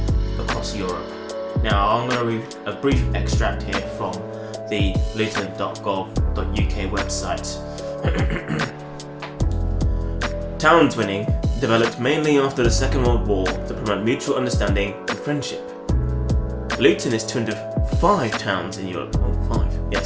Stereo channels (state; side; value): identical; both; correlation 1.00